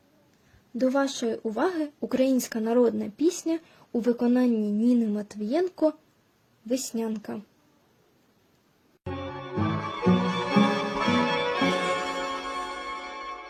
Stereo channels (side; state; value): both; identical; correlation 1.00